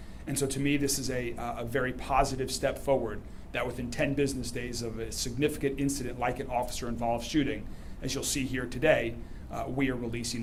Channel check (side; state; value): both; identical; correlation 1.00